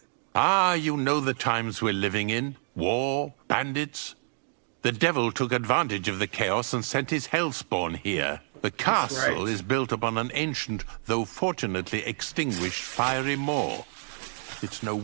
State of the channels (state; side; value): silent; left; 59 dB below the other